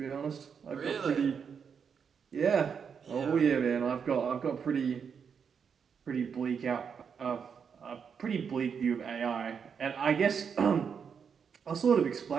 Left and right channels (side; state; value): left; quieter; 6.7 dB